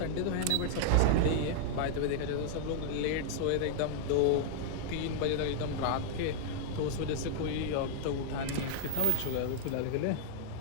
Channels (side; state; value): both; different; correlation -0.01